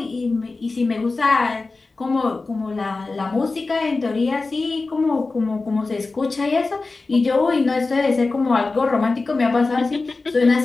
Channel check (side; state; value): right; quieter; 3.7 dB